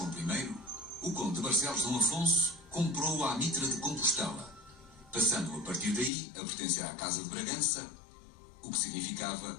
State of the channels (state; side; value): drops out; right; at 6.1 s